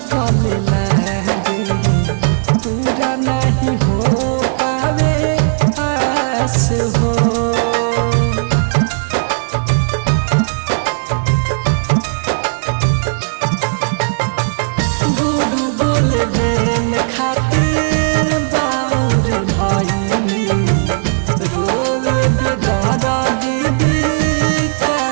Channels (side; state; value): left; silent; digital silence